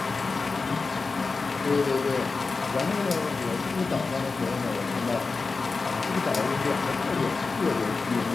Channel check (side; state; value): right; quieter; 4.2 dB